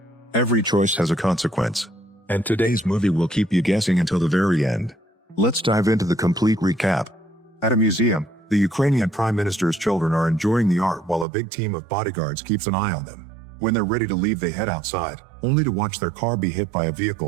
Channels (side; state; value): left; drops out; at 11.2 s